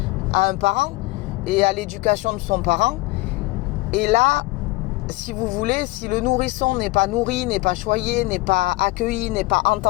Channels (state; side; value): quieter; right; 21.8 dB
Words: à un parent et à l'éducation de son parent, et là, si vous voulez, si le nourrisson n'est pas nourri, n'est pas choyé, n'est pas accueilli, n'est pas